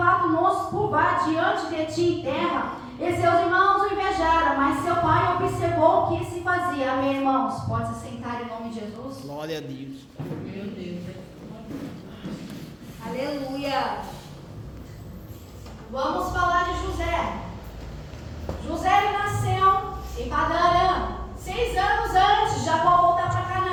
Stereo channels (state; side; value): identical; both; correlation 1.00